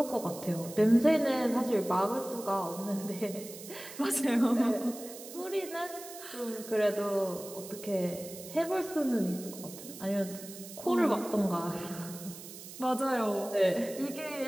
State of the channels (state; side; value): noise; right; hiss, 14 dB below the sound